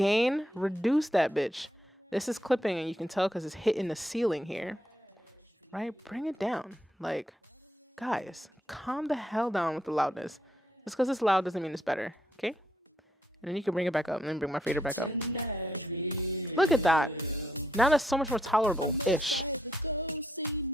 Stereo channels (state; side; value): normal; both; correlation 0.75